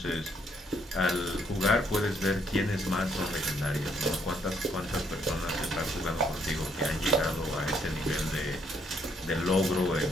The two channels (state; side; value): normal; both; correlation 0.70